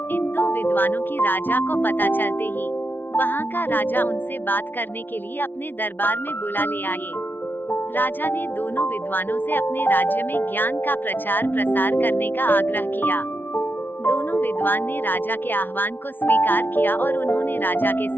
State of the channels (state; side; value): late; right; 0.094 ms